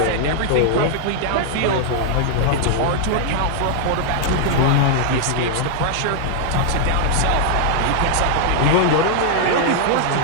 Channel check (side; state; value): both; different; correlation -0.01